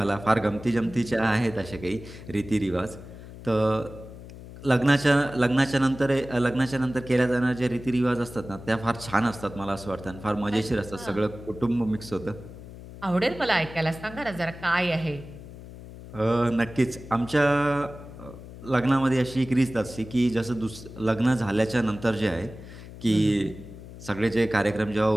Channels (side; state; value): left; noise; hum, 15 dB below the sound